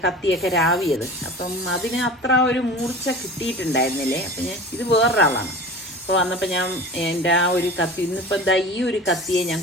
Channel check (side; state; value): both; normal; correlation 0.36